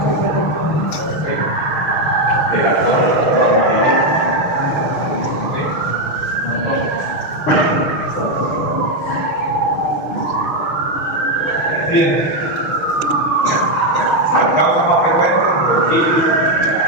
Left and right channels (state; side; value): late; right; 6.4 ms